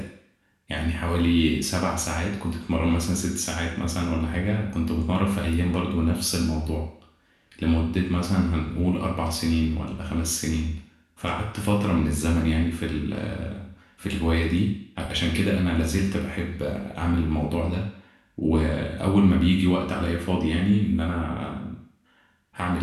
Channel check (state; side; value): identical; both; correlation 1.00